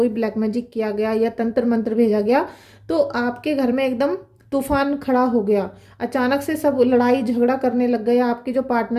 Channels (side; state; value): both; identical; correlation 1.00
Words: ब्लैक मैजिक किया गया या तंत्र मंत्र भेजा गया, तो आपके घर में एकदम तूफान खड़ा हो गया। अचानक से सब लड़ाई झगड़ा करने लग गए। आपके जो